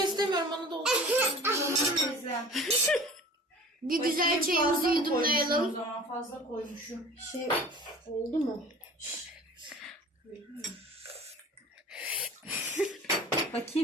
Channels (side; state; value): both; normal; correlation 0.43